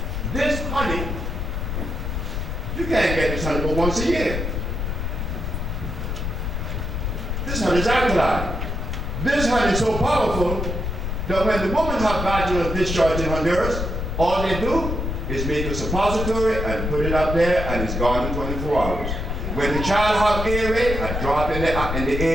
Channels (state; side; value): noise; left; rumble, 3 dB below the sound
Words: This honey, you can't get this honey but once a year. This honey is alkaline. This honey is so powerful that when the woman has vaginal discharge in Honduras, all they do is make a suppository and put it up there, and it's gone in 24 hours. When the child has earache, a drop in the